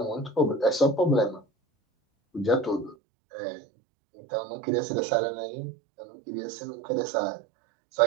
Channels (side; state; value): left; drops out; at 3.0 s